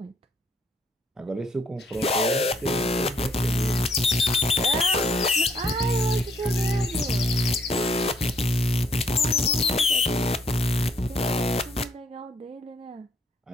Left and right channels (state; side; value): normal; both; correlation 0.67